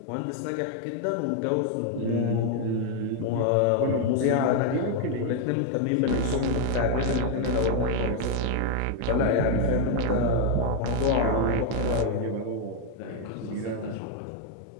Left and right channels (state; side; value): different; both; correlation 0.00